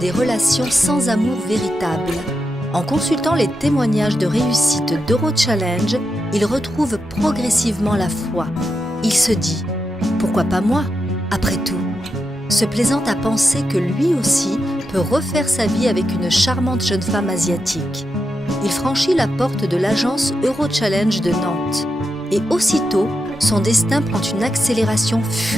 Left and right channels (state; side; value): normal; both; correlation 0.86